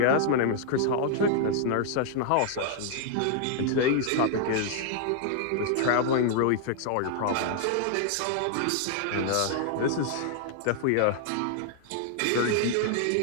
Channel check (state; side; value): different; both; correlation -0.01